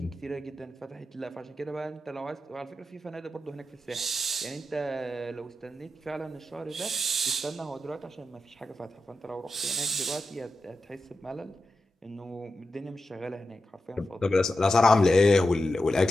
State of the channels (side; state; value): both; normal; correlation 0.91